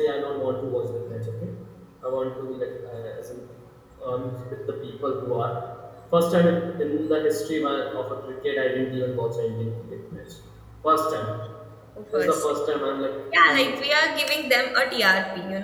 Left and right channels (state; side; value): identical; both; correlation 1.00